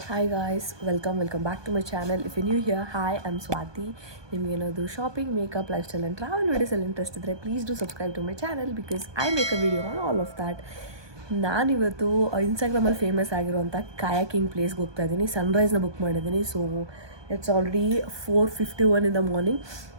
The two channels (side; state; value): left; late; 1.2 ms